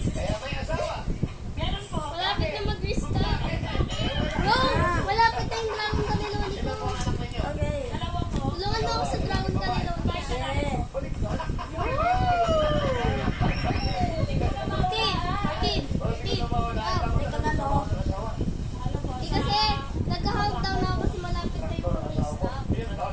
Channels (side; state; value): both; identical; correlation 1.00